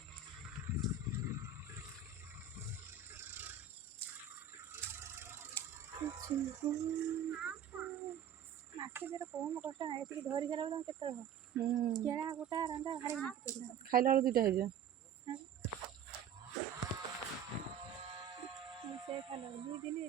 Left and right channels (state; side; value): quieter; left; 7.1 dB